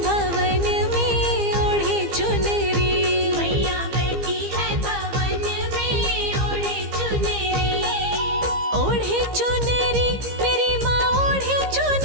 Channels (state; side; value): late; left; 15 ms